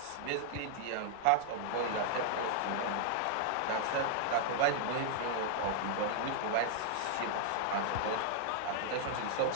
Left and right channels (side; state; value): both; different; correlation 0.00